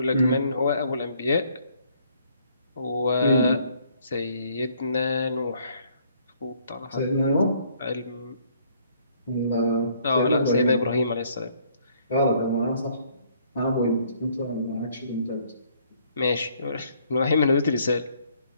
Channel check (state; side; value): inverted; both; correlation -0.64